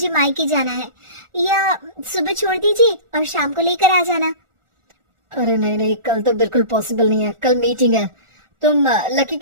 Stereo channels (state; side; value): late; left; 1.4 ms